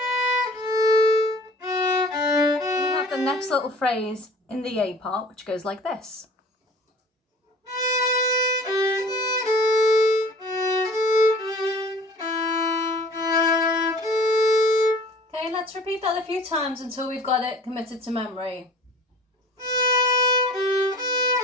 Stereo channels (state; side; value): normal; both; correlation 0.46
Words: Next little phrase in the A part, which goes like this. Okay, let's repeat that a few times until we've got it committed to memory.